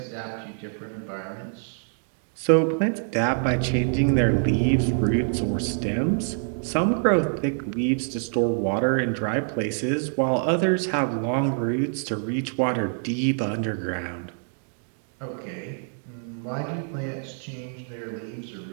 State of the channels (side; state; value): left; silent; 58 dB below the other